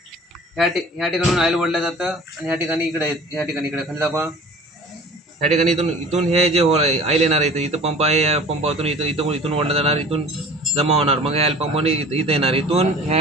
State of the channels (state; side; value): normal; both; correlation 0.43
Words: ह्या ठिकाणून ऑइल ओढलं जातं. आणि ह्या ठिकाणी इकडे खाली दाखवा. ह्या ठिकाणी इथून हे जे ऑइल येणार आहे, इथं पंप आहे, या पंपातून इथून ओढलं जाणार, इथून जमा होणार. मग ऑइल पंपाने इथं येणार, इथून